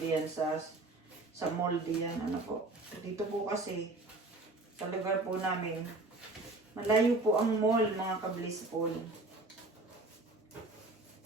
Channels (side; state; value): left; quieter; 3.0 dB